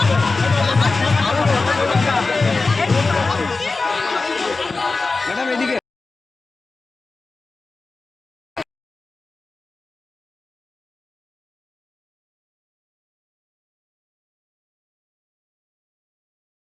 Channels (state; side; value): quieter; right; 3.8 dB